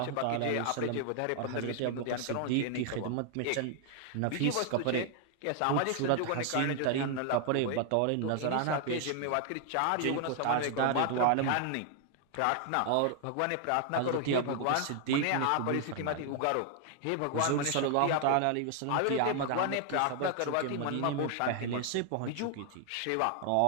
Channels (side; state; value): both; different; correlation 0.00